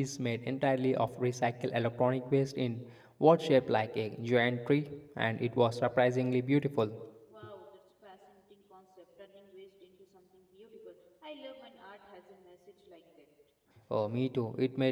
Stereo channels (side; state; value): both; identical; correlation 1.00